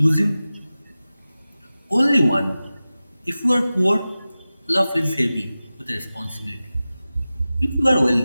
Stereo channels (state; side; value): inverted; both; correlation -0.96